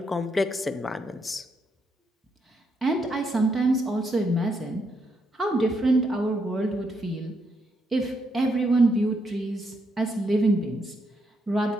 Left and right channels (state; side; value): normal; both; correlation 0.78